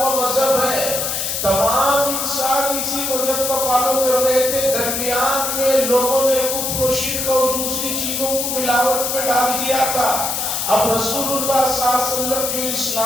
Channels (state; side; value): noise; left; hiss, 1 dB below the sound